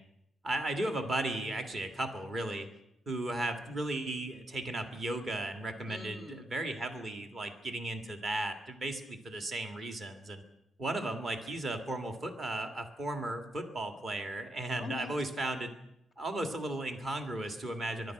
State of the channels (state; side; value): normal; both; correlation 0.80